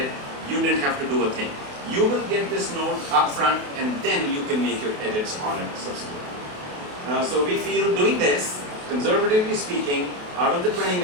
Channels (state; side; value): late; left; 28 ms